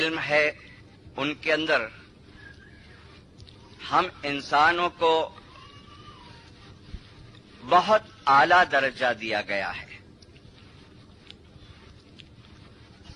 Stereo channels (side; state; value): both; identical; correlation 1.00